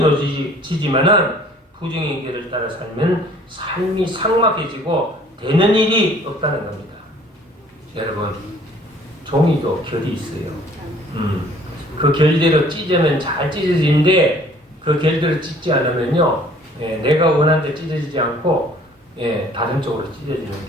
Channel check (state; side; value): normal; both; correlation 0.55